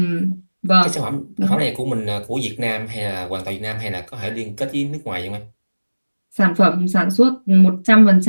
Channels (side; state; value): both; inverted; correlation -1.00